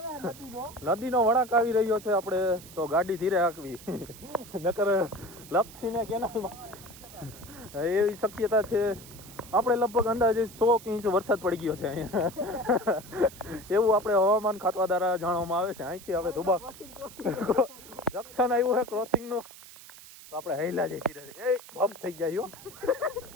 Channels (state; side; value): noise; right; hiss, 18 dB below the sound